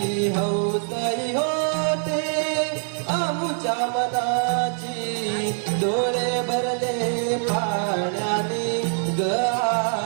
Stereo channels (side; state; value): left; silent; digital silence